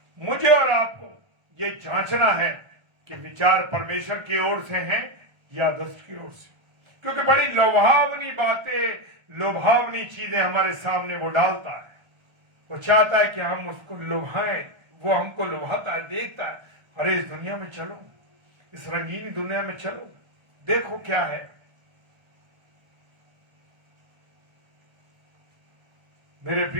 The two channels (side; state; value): left; late; 1.3 ms